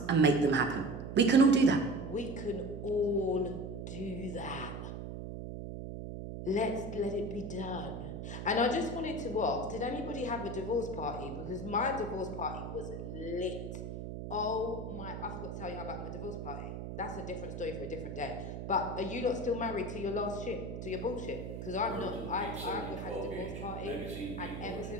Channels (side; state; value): right; noise; hum, 7 dB below the sound